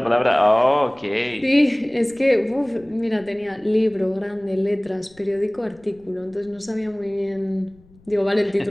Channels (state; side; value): noise; left; rumble, 28 dB below the sound